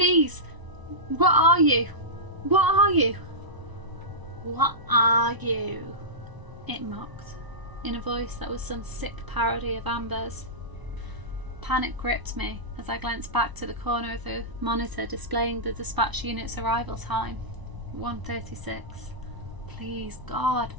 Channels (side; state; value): left; late; 1.0 ms